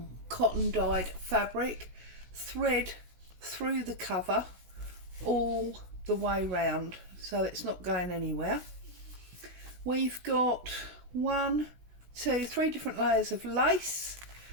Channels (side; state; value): left; late; 16 ms